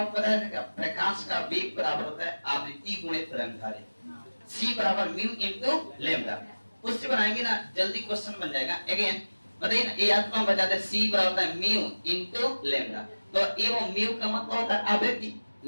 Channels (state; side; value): inverted; both; correlation -1.00